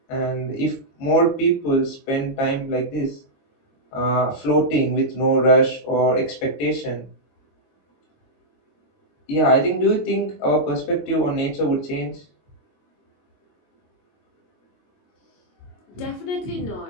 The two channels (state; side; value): late; right; 22 ms